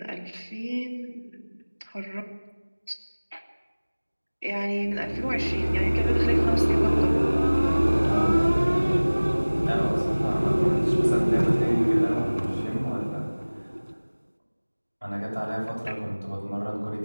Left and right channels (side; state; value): both; inverted; correlation -1.00